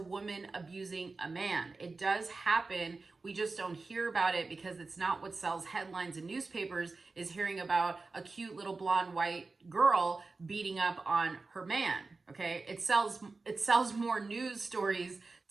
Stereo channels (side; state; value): left; quieter; 3.8 dB